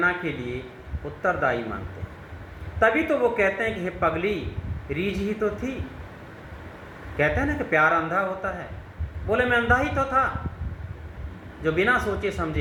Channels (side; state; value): both; identical; correlation 1.00